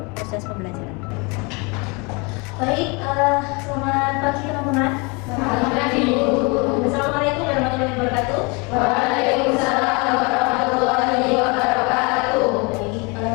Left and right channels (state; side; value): quieter; right; 29.5 dB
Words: proses pembelajaran. Baik, selamat pagi teman-teman. Selamat pagi, Bu. Assalamualaikum warahmatullahi wabarakatuh. Waalaikumsalam warahmatullahi wabarakatuh. Baik,